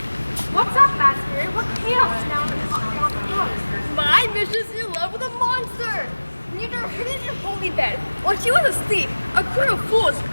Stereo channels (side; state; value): both; inverted; correlation -1.00